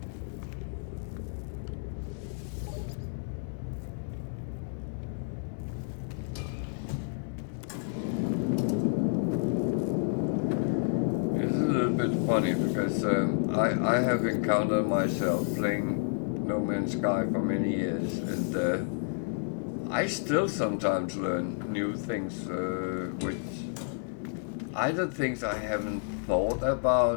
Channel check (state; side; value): silent; right; digital silence